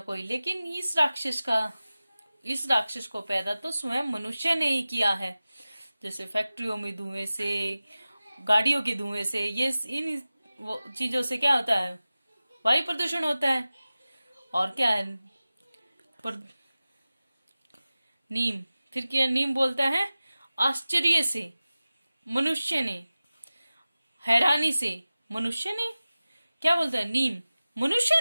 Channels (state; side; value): inverted; both; correlation -0.96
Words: कोई, लेकिन इस राक्षस को पैदा तो स्वयं मनुष्य ने ही किया है। जैसे फैक्ट्रियों में धुएं से, गाड़ियों के धुएं से, ये इन चीजों से क्या होता है? वायु प्रदूषण होता है। और क्या है? नीम, फिर क्या नीम बोलता है? आश्चर्य से मनुष्य ने, हैरानी से मनुष्य ने, क्या बोलता है नीम? मनुष्य